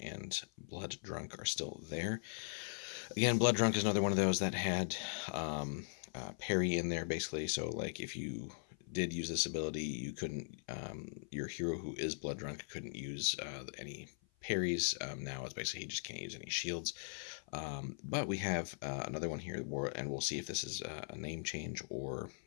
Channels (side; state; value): right; silent; 51 dB below the other